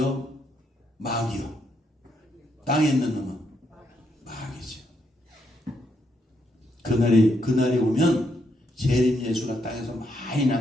마귀요? 땅에 있는 놈은 마귀죠. 그날이 오면 재림 예수가 땅에서 많이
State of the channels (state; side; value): normal; both; correlation 0.77